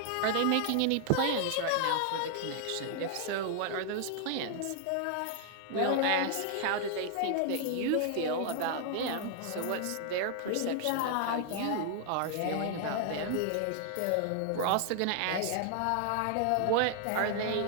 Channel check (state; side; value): different; both; correlation 0.00